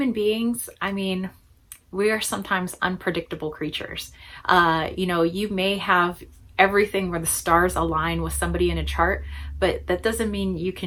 beings, I mean, we are sometimes unpredictable creatures. You may have everything where the stars align with somebody in a chart, but that doesn't mean you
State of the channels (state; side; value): identical; both; correlation 1.00